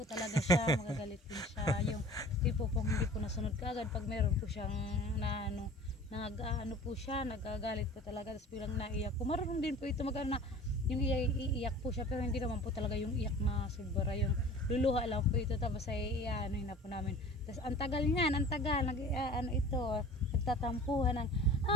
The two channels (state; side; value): normal; both; correlation 0.43